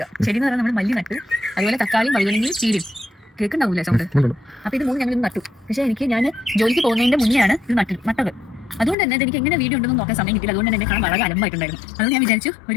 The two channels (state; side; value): drops out; right; at 9.0 s